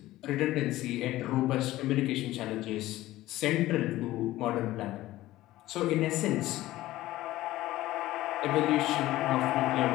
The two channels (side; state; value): right; quieter; 16.2 dB